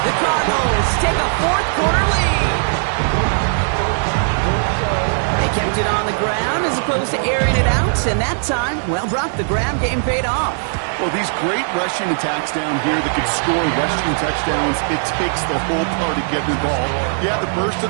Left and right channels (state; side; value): silent; left; digital silence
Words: The Cardinals take a fourth quarter lead. They kept it on the ground as the opposed to airing it out, and that time, well, Brock, the ground game paid off. Well, these great rushing attacks down here that can score rushing touchdowns, it takes the whole party getting involved. Yeah, the burst of